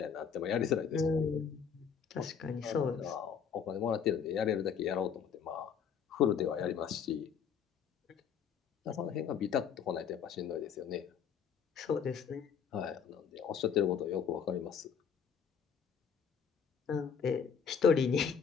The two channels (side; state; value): right; quieter; 7.1 dB